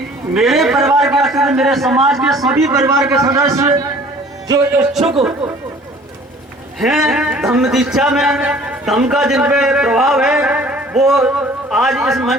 मेरे परिवार के सदस्य, मेरे समाज के सभी परिवार के सदस्य जो इच्छुक हैं धम्म दीक्षा में, धम्म का जिन पे प्रभाव है, वो आज इस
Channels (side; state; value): both; normal; correlation 0.51